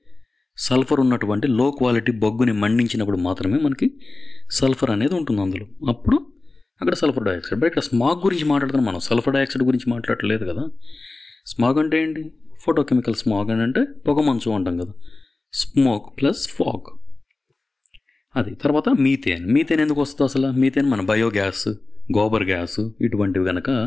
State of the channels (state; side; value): quieter; right; 3.3 dB